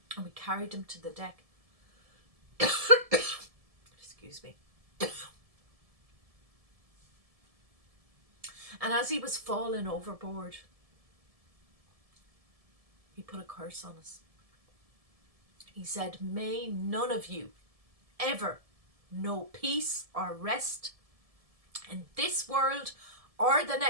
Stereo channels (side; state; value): left; late; 1.7 ms